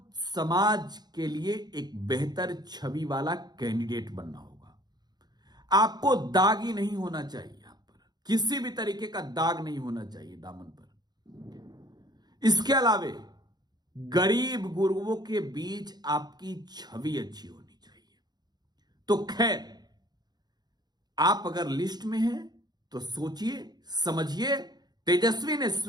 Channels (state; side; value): late; left; 0.20 ms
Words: समाज के लिए एक बेहतर छवि वाला कैंडिडेट बनना होगा। आपको दागी नहीं होना चाहिए, यहां पर किसी भी तरीके का दाग नहीं होना चाहिए दामन पर। इसके अलावे गरीब गुरुओं के बीच आपकी छवि अच्छी होनी चाहिए। तो खैर, आप अगर लिस्ट में हैं तो सोचिए समझिए। तेजस्वी ने